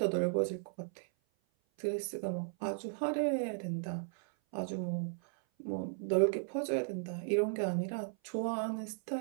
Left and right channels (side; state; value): left; silent; 54 dB below the other